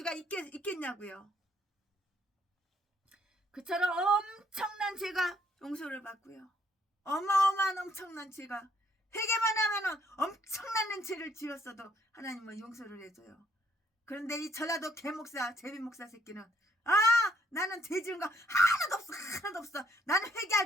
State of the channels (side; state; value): both; normal; correlation 0.68